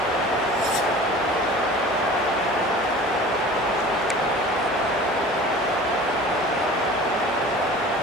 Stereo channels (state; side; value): noise; left; hum, 26 dB below the sound